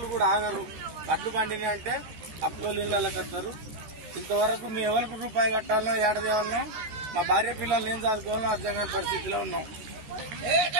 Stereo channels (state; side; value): late; left; 14 ms